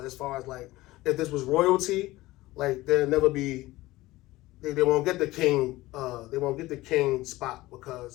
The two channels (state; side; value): quieter; right; 18.4 dB